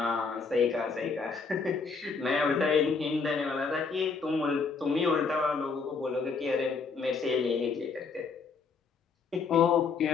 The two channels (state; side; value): quieter; right; 4.9 dB